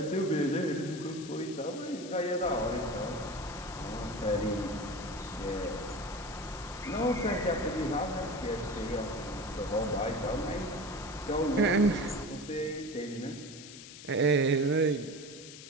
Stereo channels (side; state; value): left; noise; hiss, 14 dB below the sound